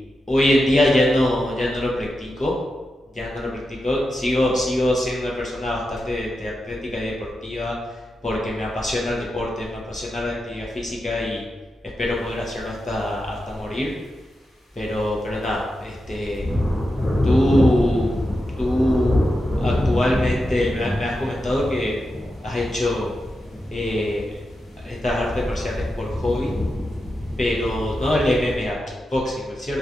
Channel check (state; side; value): normal; both; correlation 0.89